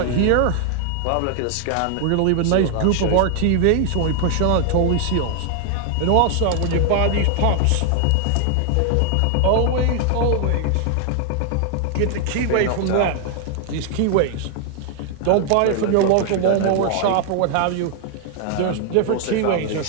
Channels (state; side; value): different; both; correlation 0.00